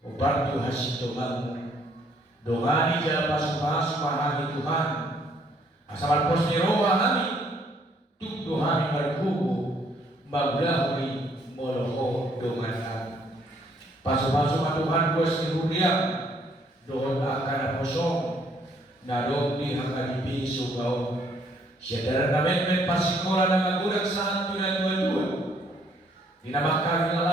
Hubag Tuhan sito man, dongani jala pasu-pasu mahami Tuhan. Asal pos ni roha kami, tuk dohami markubu, maglahuri moloho dongan kami. Pasu-pasu ma Tuhan bos ni huriang, doon akan posong, na doon ni hangadipi sugaw. Siya namin may pasikola na magulang sa hanto na dua-dua. Dinamakang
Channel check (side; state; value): both; normal; correlation 0.66